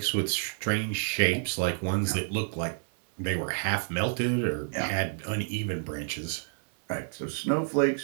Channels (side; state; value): left; silent; 58 dB below the other